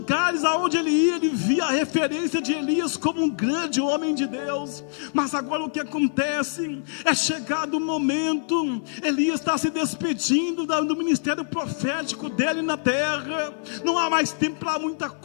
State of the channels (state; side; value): silent; right; digital silence